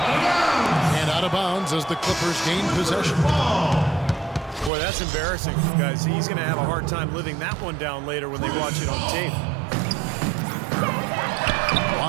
And out of bounds as the Clippers gain possession. Boy, that's embarrassing, guys. He's going to have a hard time living that one down later when they watch it on tape.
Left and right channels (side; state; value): left; drops out; at 4.7 s